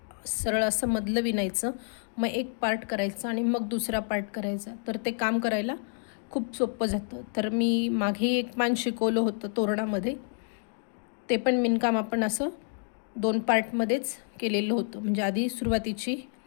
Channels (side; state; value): right; silent; 59 dB below the other